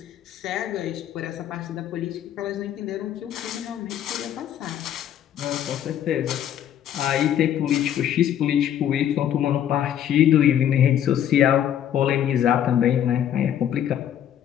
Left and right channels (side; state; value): right; quieter; 10.3 dB